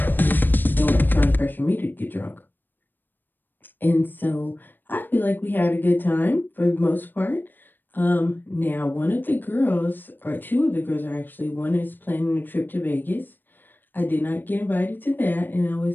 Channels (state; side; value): late; right; 0.093 ms